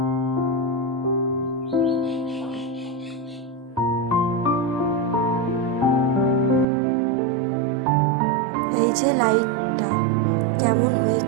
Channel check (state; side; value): drops out; left; at 6.7 s